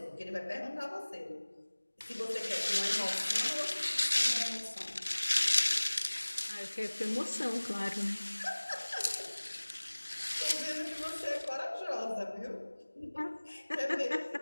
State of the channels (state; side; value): inverted; both; correlation -1.00